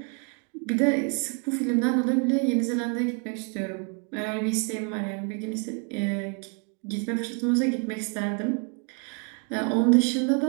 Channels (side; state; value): left; quieter; 36.5 dB